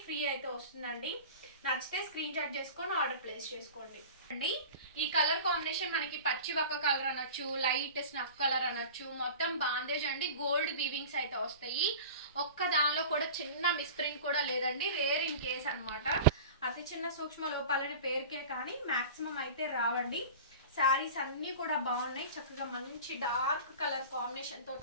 ఫ్రీ అయితే వస్తుందండి. నచ్చితే స్క్రీన్ షాట్ చేసుకొని ఆర్డర్ ప్లేస్ చేసుకోండి అండి. ఈ కలర్ కాంబినేషన్ మనకి పచ్చి వక్క కలర్ అనొచ్చు, లైట్ స్నఫ్ కలర్ అనొచ్చు. మొత్తం బాందేజ్ అండి, గోల్డ్ వీవింగ్స్ అయితే వస్తాయి. ఒక్క దానిలో కూడా చిన్న మిస్ప్రింట్ కూడా లేదండి. రేర్ ఇన్ కేస్ అనమాట. అతి చిన్న సూక్ష్మ లోపాలనే పేరుకే కానీ మాక్సిమం అయితే రావండి. శారీస్ అన్ని కూడా బాగున్నాయి. చక్కగా మంచి డార్క్ కలర్ కాంబినేషన్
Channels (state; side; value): inverted; both; correlation -0.36